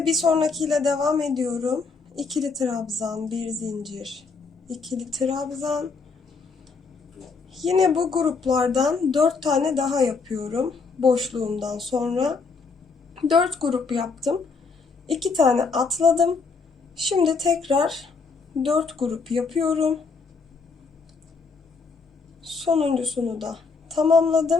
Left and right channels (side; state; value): right; quieter; 4.6 dB